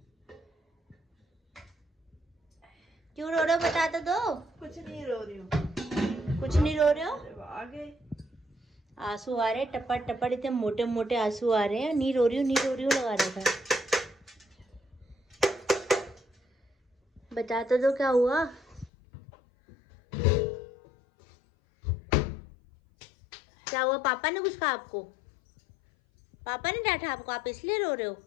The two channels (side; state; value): right; drops out; at 18.9 s